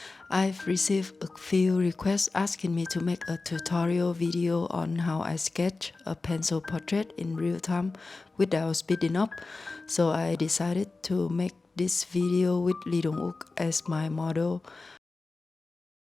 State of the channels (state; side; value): quieter; right; 3.6 dB